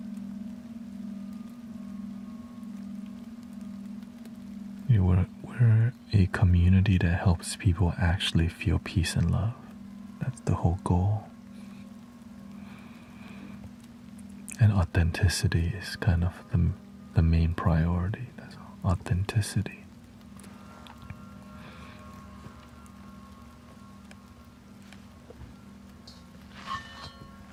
We're a community that helps people actually feel peace and love. That's the whole goal. And authenticity is kind of the main priority. That's authenticity.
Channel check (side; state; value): both; identical; correlation 1.00